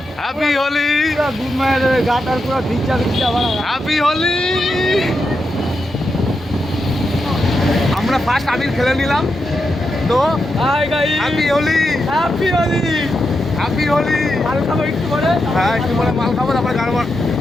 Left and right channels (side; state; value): both; normal; correlation 0.86